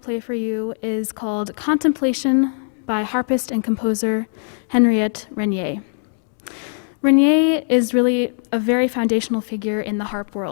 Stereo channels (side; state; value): right; silent; 65 dB below the other